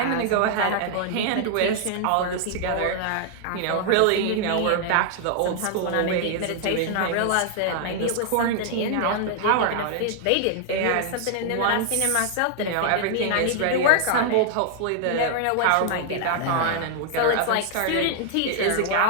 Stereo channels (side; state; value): both; different; correlation -0.01